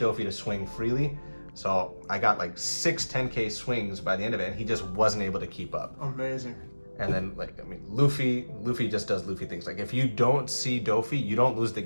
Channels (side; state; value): both; inverted; correlation -1.00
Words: to swing freely. So I got like 6 10k swings by the end of it, and he just wasn't able to keep up. Amazing. And then, like, I mean, Luffy just does Luffy things. Like, if you don't see Doffy, you don't lose the